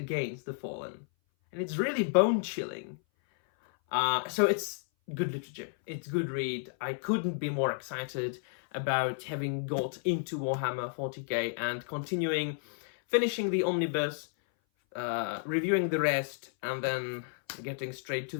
the Fallen. And it's really bone-chilling. So it's good literature. It's good read. I couldn't be more excited about having got into Warhammer 40k and finishing the omnibus, reviewing the rest, and then getting straight to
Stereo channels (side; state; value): right; silent; 57 dB below the other